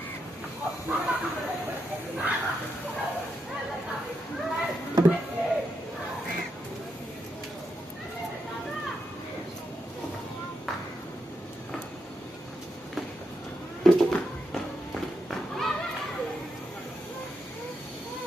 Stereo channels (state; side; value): normal; both; correlation 0.83